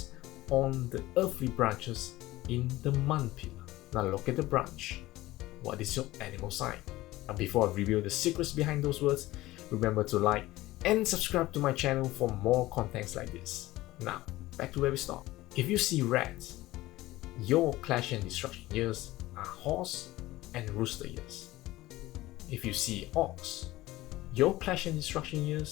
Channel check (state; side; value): quieter; right; 17.7 dB